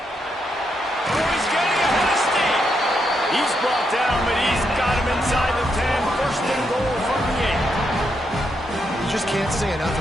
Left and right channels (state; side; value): normal; both; correlation 0.80